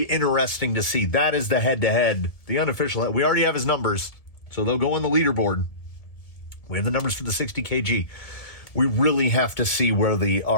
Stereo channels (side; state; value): right; late; 1.7 ms